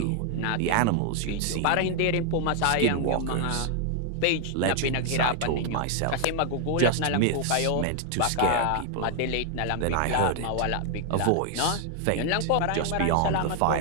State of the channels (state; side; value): different; both; correlation 0.00